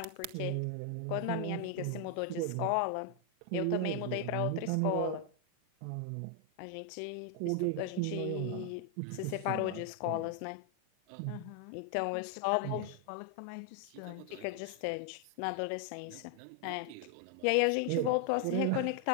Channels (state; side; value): different; both; correlation 0.00